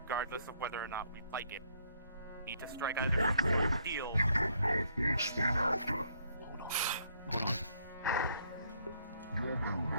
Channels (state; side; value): inverted; both; correlation -0.68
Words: of whether or not we like it. We need to strike either a deal. We'll explain after. You may